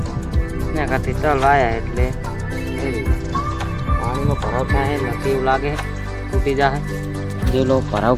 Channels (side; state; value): both; identical; correlation 1.00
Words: એના કરતી તલ વાયા એટલે પાણીનો ભરાવ થાય નથી એવું લાગે, તૂટી જાય। જે લોકો ભરાવ